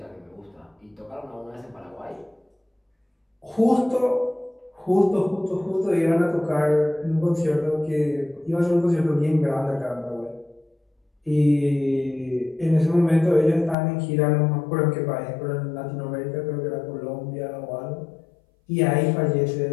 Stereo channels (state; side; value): drops out; right; at 13.8 s